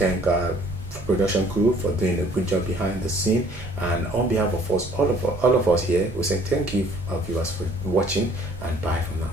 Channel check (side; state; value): both; normal; correlation 0.57